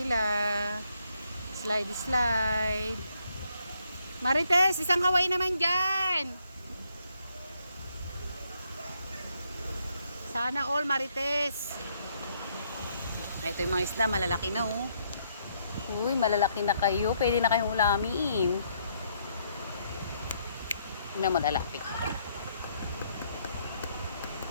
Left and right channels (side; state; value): both; inverted; correlation -0.72